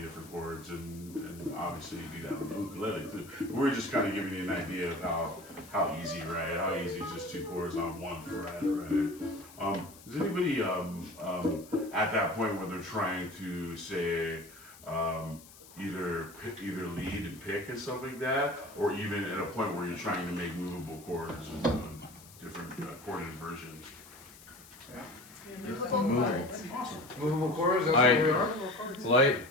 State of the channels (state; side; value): noise; left; hiss, 20 dB below the sound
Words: different chords, and obviously you do that on the ukulele too. We're just kind of giving you an idea of how easy, right? How easy is just 2 chords on 1 fret, right? Is anybody at that point where they're trying to say either lead and pick and stuff like that, or even at a point where you're trying to make movable chords and different chord inversions? Movable chords, that's where we are. Like,